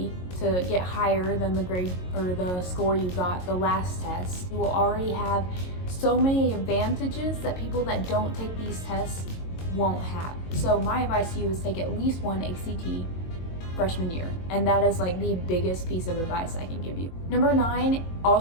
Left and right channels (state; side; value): late; right; 22 ms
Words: to get higher than the grade or the score you got the last test. You will already have so many advantages that people that don't take these tests won't have. So my advice to you is take at least one ACT freshman year, and that is like the biggest piece of advice I can give you. Number 9